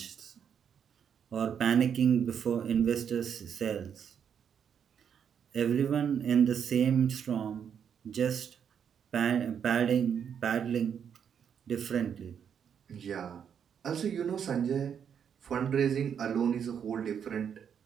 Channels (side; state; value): left; quieter; 7.9 dB